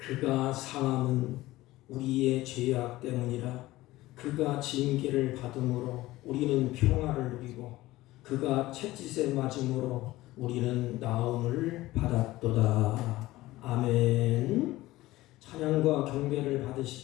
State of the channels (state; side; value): quieter; right; 17.6 dB